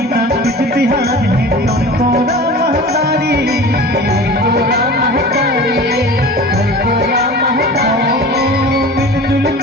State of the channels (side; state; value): both; normal; correlation 0.38